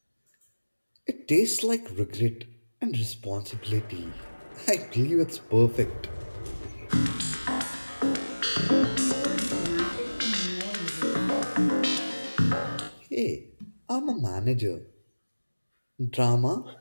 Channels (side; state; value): both; inverted; correlation -1.00